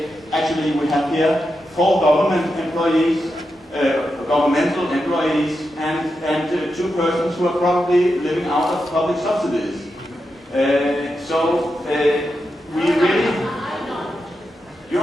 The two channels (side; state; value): both; normal; correlation 0.87